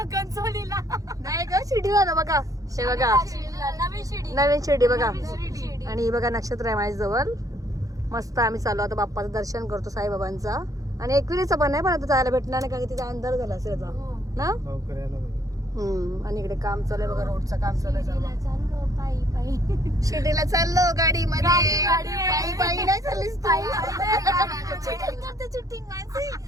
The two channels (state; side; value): late; left; 0.17 ms